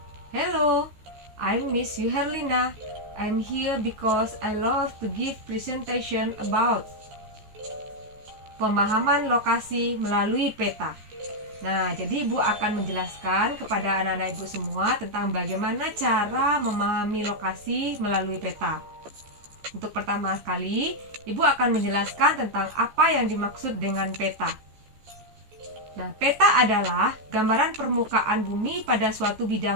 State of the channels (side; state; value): left; late; 14 ms